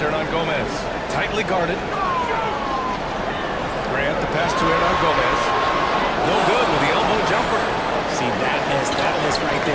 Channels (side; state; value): both; identical; correlation 1.00